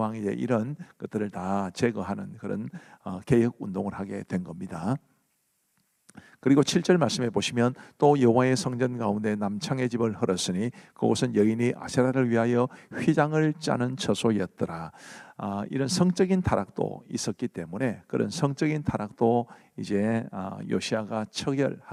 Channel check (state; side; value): identical; both; correlation 1.00